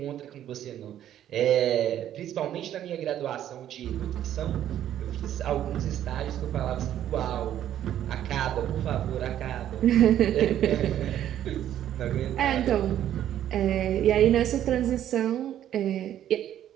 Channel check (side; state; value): left; quieter; 11.3 dB